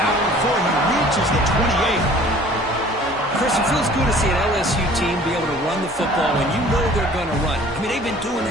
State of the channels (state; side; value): normal; both; correlation 0.50